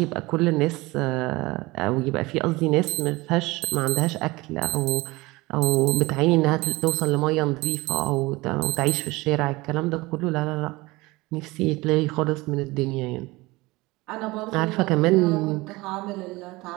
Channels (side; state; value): left; quieter; 21.7 dB